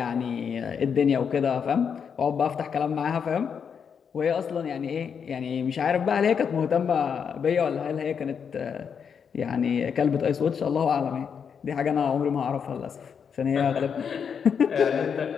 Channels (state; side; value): quieter; right; 6.9 dB